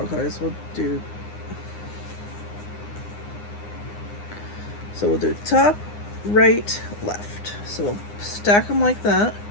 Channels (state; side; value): late; right; 9.8 ms